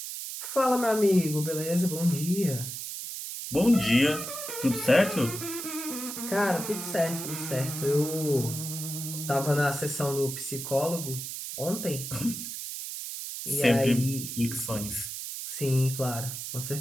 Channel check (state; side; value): noise; right; hiss, 7 dB below the sound